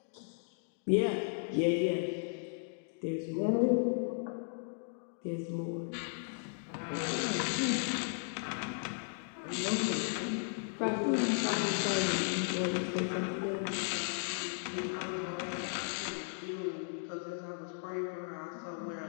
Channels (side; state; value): right; silent; digital silence